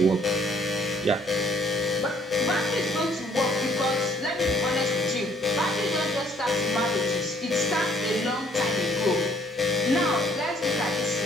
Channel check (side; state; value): both; normal; correlation 0.62